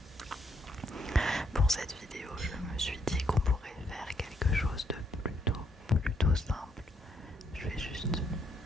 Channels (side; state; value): both; normal; correlation 0.74